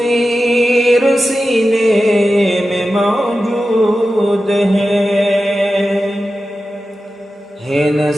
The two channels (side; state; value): both; normal; correlation 0.93